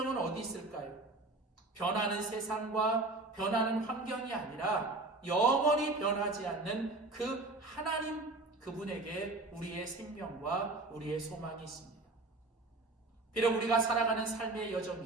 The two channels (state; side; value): quieter; left; 3.1 dB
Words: 어디 있을까요? 변하는 세상과 변하는 환경이 아니라 영원히 변하지 않는 그 하나님 그분에게 우리의 생명과 우리의 소망이 있습니다. 비록 우리가 살아가는 삶의